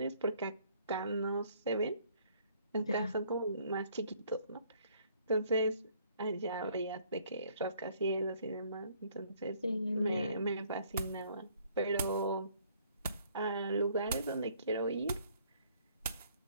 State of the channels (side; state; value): both; inverted; correlation -0.62